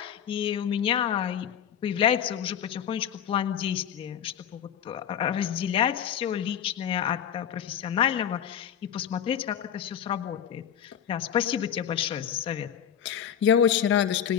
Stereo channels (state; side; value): quieter; right; 9.2 dB